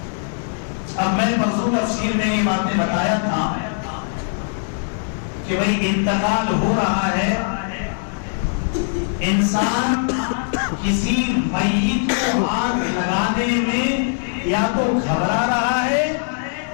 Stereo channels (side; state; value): right; silent; digital silence